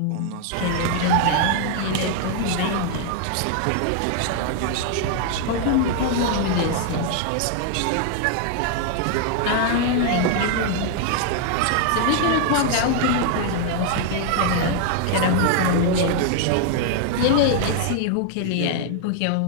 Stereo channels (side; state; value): both; different; correlation 0.00